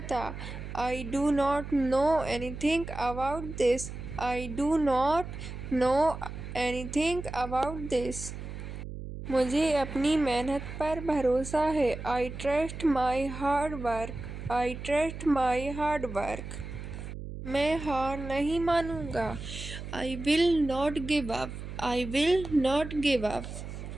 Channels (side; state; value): right; noise; hum, 9 dB below the sound